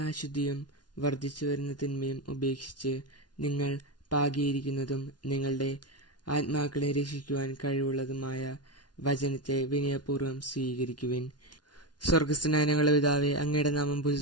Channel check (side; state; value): right; late; 0.69 ms